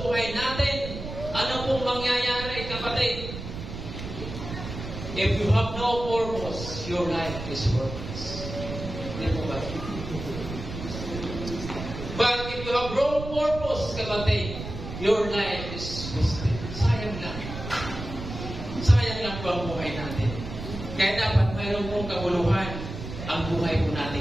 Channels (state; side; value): noise; right; rumble, 8 dB below the sound